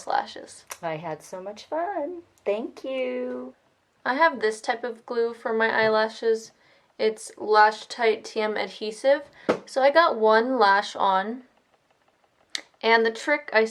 lashes. I had so much fun. Thank you. I have this type of glue for my eyelashes. It's Lash Tight TM adhesive. So I got one lash on. And the trick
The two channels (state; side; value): identical; both; correlation 1.00